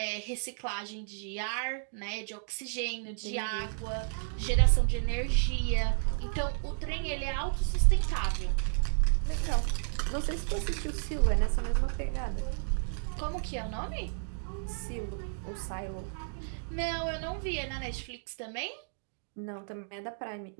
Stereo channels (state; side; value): silent; left; digital silence